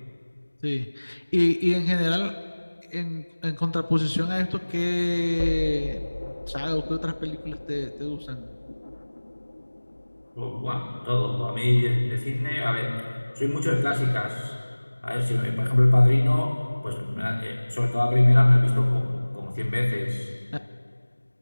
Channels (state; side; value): inverted; both; correlation -1.00